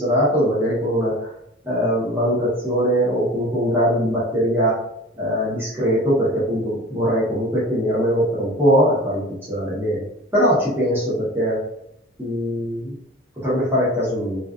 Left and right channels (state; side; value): normal; both; correlation 0.39